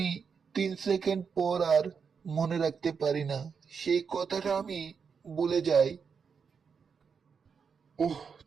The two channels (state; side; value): quieter; left; 6.1 dB